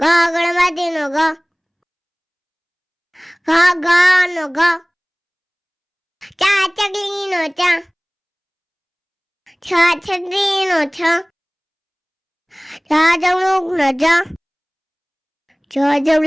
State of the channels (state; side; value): identical; both; correlation 1.00